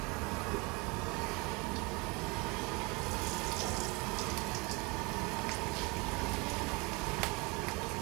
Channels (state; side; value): quieter; left; 27.3 dB